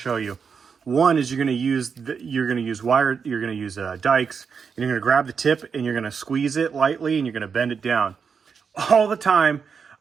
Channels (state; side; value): quieter; left; 6.1 dB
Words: show you. One is you're going to use dikes, and you're going to grab the tip and you're going to squeeze it lightly and you're going to bend it down. All the time,